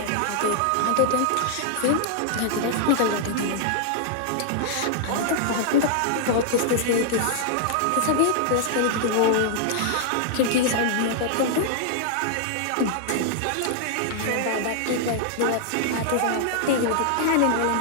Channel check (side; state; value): both; different; correlation -0.01